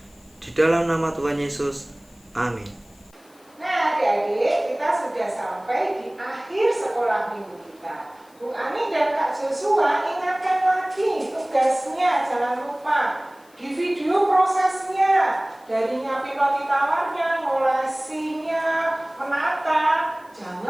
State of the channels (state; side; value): noise; left; hiss, 30 dB below the sound